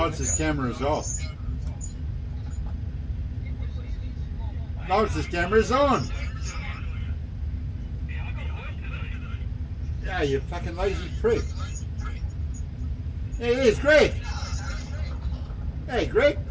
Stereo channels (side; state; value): both; identical; correlation 1.00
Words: camera is off. Lawrence's camera is on. Yeah, you fucking lazy prick. Hey, there's Greg. Hey, Greg.